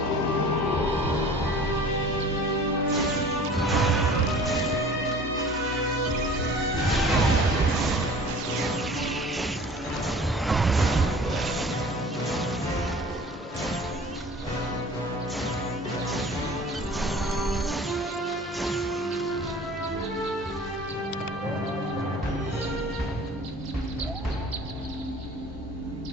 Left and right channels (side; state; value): both; normal; correlation 0.45